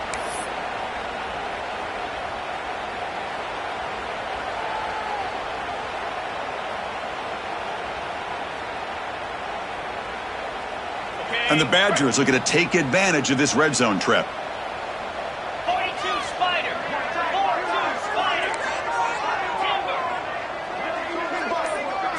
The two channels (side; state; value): both; identical; correlation 1.00